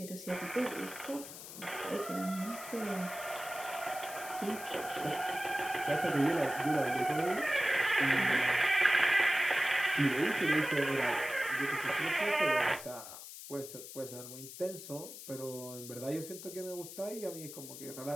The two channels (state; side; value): noise; left; hiss, 12 dB below the sound